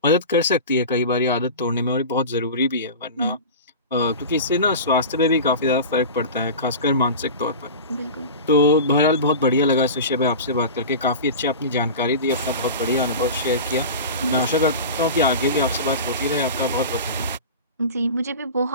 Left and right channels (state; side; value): inverted; both; correlation -0.31